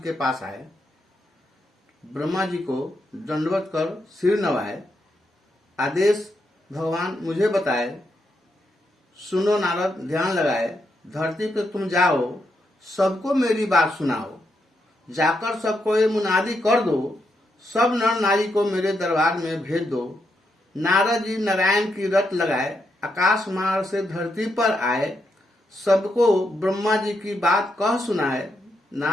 पास आए। ब्रह्मा जी को दंडवत कर सिर नवाए। आदेश भगवान मुझे बताए। सुनो नारद, ध्यान लगाए। धरती पे तुम जाओ, सबको मेरी बात सुनाओ। जाकर सबको ये मुनादी कर दो, सब नर नारी को मेरे दरबार में भेज दो। नारद जी नारायण की रट लगाए, आकाश मार्ग से धरती पर आए। सबको ब्रह्मा जी की बात कह सुनाए।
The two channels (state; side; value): normal; both; correlation 0.81